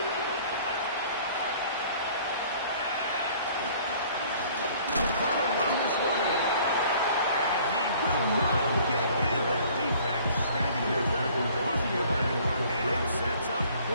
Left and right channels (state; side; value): inverted; both; correlation -0.54